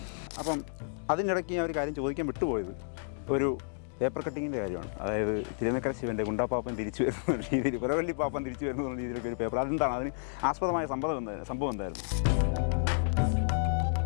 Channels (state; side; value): silent; right; digital silence